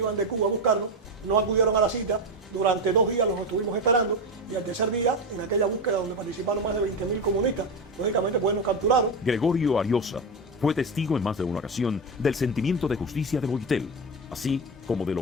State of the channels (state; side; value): normal; both; correlation 0.15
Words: de Cuba a buscarnos, no acudieron a la cita, durante 2 días los estuvimos esperando y al tercer día, en aquella búsqueda donde participaron más de 20.000 comunistas, lógicamente pues nos capturaron. Gregorio Ariosa fue testigo en más de una ocasión del sentimiento de justicia de Boitel, así como de